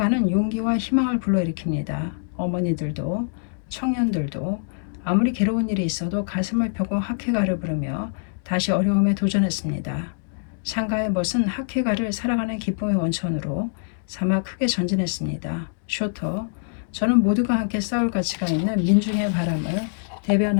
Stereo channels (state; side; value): silent; right; digital silence